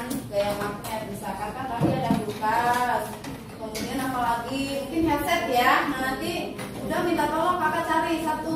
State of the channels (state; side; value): identical; both; correlation 1.00